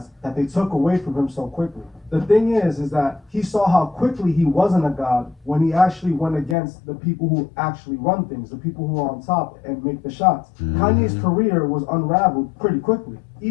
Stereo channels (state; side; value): drops out; right; at 6.6 s